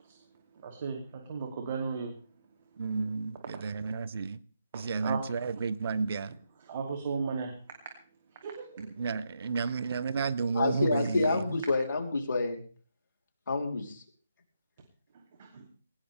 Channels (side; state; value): both; inverted; correlation -0.80